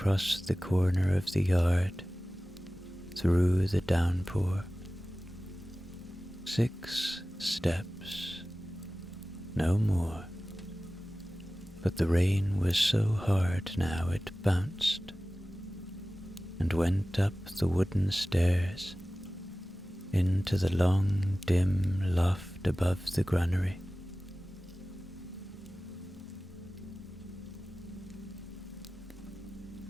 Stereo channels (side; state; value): both; normal; correlation 0.97